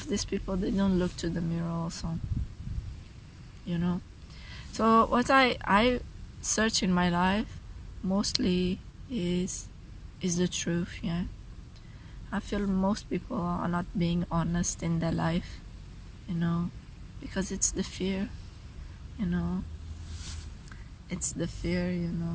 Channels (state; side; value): identical; both; correlation 1.00